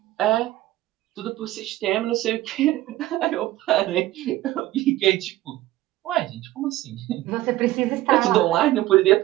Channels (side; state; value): left; quieter; 16.0 dB